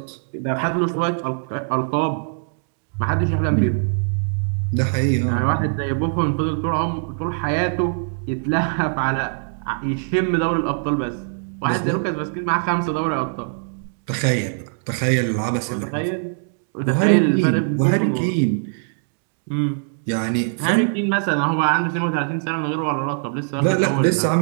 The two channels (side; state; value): left; silent; digital silence